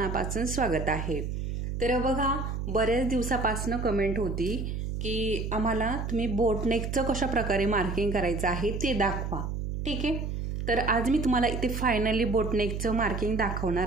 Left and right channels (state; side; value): noise; right; hum, 3 dB below the sound